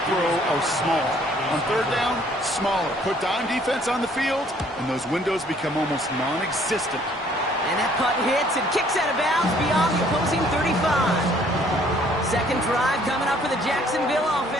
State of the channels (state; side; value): normal; both; correlation 0.61